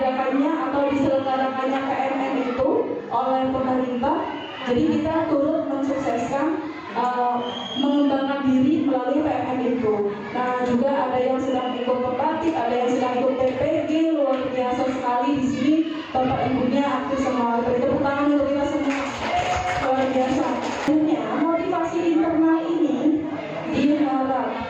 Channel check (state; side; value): identical; both; correlation 1.00